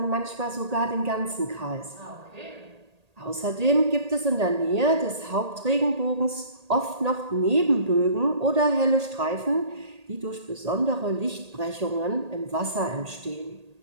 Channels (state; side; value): late; left; 1.8 ms